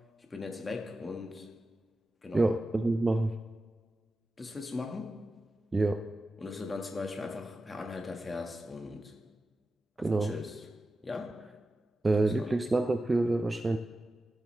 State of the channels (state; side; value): normal; both; correlation 0.93